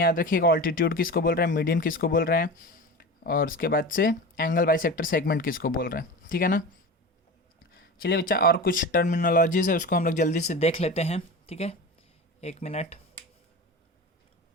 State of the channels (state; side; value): normal; both; correlation 0.30